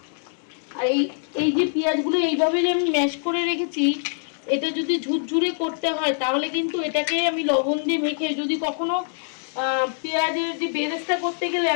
আর এই যে পেঁয়াজগুলো এইভাবে যে আমি ম্যাশ করে রেখেছি, এটা যদি ঝুরঝুরে করতে হয় তাহলে কিন্তু এটাকে আমি লবণ দিয়ে মেখে, যদি কখনো পেঁয়াজের যে বেরেস্তা করতে গেলে,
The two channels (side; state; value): right; silent; digital silence